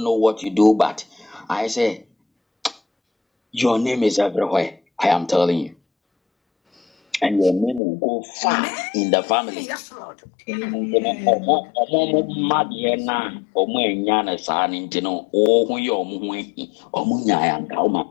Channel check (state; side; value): drops out; right; at 7.8 s